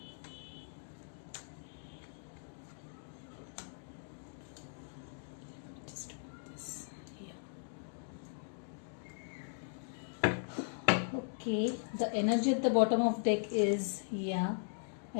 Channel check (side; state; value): right; silent; digital silence